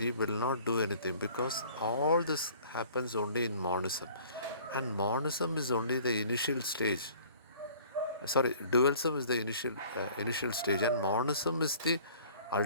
will not do anything, because all this happens only in monism. And monism is only the initial stage. Sorry, dualism is the initial stage, and monism is the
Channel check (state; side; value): inverted; both; correlation -0.51